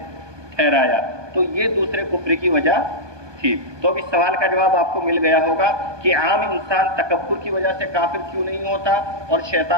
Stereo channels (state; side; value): late; left; 1.2 ms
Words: ٹھہرایا, تو یہ دوسرے کفر کی وجہ تھی. تو اب اس سوال کا جواب آپ کو مل گیا ہوگا کہ عام انسان تکبر کی وجہ سے کافر کیوں نہیں ہوتا اور